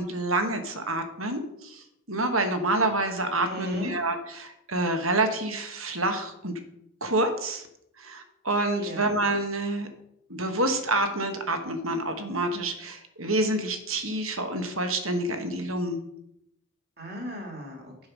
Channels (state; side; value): normal; both; correlation 0.06